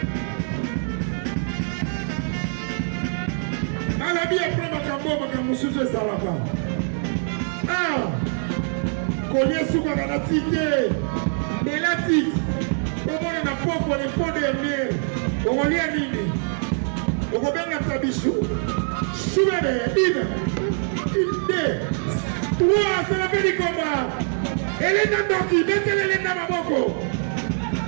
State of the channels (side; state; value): left; silent; 58 dB below the other